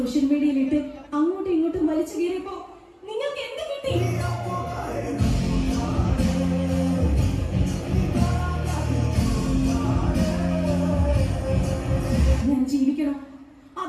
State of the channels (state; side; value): identical; both; correlation 1.00